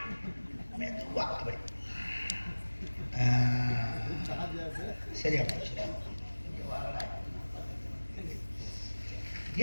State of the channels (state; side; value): inverted; both; correlation -1.00